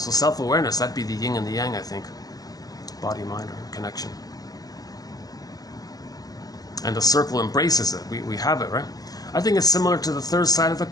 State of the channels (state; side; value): late; right; 0.18 ms